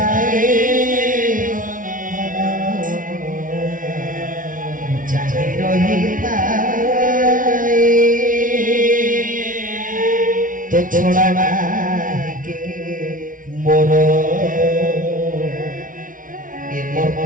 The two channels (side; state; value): left; late; 0.39 ms